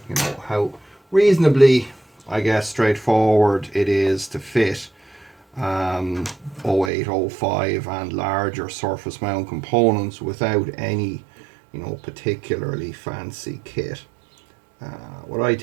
you know how reasonably, I guess, straightforward it is to fit 0805 and larger surface mount components without any, particularly fancy kit. What I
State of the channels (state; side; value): drops out; left; at 6.9 s